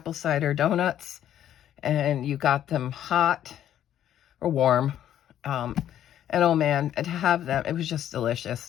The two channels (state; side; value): quieter; right; 11.0 dB